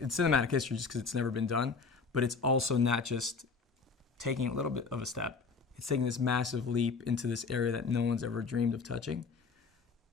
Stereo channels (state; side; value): quieter; right; 4.8 dB